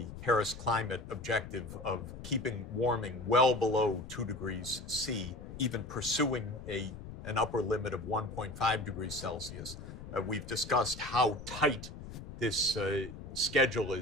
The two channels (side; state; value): left; noise; rumble, 12 dB below the sound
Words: Paris climate objective of keeping warming well below 2 degrees C, even pursuing an upper limit of 1.5 degrees Celsius. We've discussed how tight this schedule